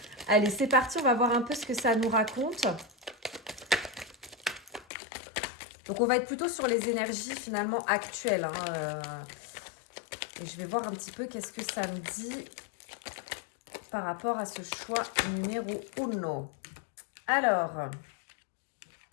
Allez, c'est parti, on va voir un peu ce que ça nous raconte. Donc, on va être plutôt sur les énergies finalement actuelles. Et je vais voir un petit peu qu'est-ce que ça me dit par rapport à ce choix numéro 1. Alors,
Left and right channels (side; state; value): right; drops out; at 4.9 s